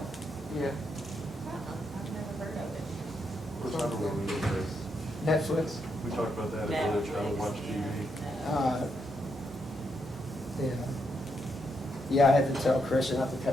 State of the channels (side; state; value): both; normal; correlation 0.79